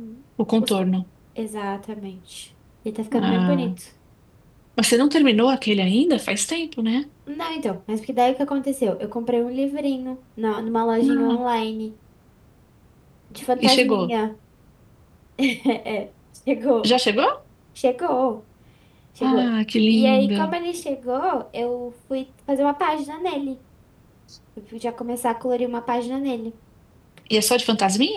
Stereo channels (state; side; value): identical; both; correlation 1.00